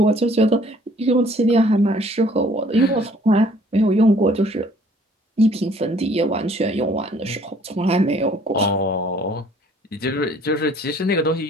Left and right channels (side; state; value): both; normal; correlation 0.58